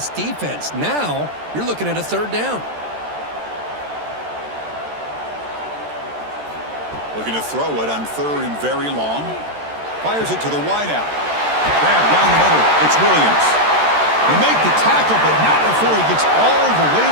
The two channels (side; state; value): left; late; 13 ms